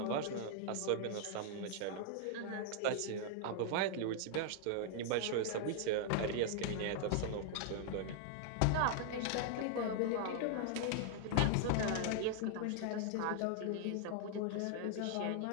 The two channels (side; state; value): both; different; correlation -0.01